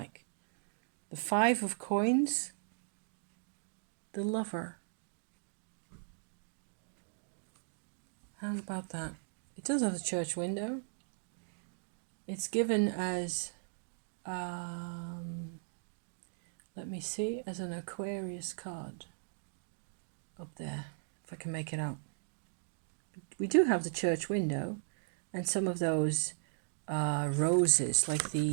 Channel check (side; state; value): left; silent; digital silence